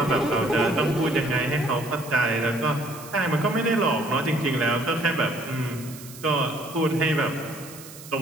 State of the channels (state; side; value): noise; right; hiss, 16 dB below the sound